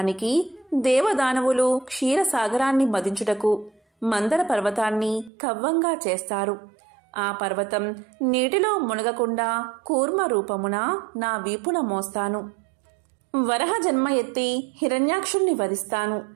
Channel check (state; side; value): drops out; left; at 5.3 s